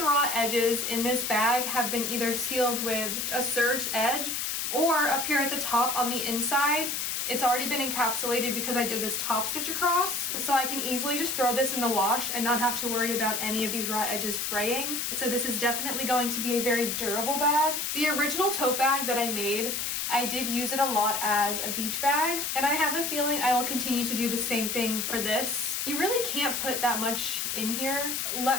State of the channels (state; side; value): noise; left; hiss, 1 dB below the sound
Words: raw edges in this bag have been either sealed with a serged edge, or up here at the top on the inside, It's already been encapsulated because I did this top stitch across, so I can easily just throw this in the wash and not have to worry about any of these raw edges fraying. So this is definitely going to be a very durable bag. The original tote bag that I made, I did use it a lot as a beach bag, and I have a feeling I will continue to do the same thing for this. You really can't put that much in here.